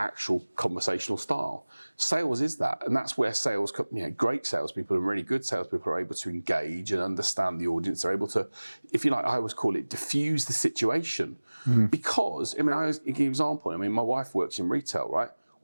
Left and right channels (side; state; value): both; inverted; correlation -1.00